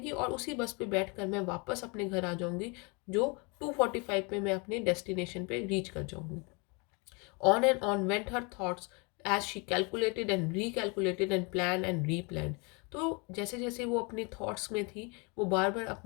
और उसी बस पे बैठकर मैं वापस अपने घर आ जाऊंगी, जो 2:45 पे मैं अपने डेस्टिनेशन पे रीच कर जाऊंगी। On and on went her thoughts as she calculated and recalculated and planned and replanned. तो जैसे जैसे वो अपनी थॉट्स में थी, वो बार बार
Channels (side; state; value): right; quieter; 31.2 dB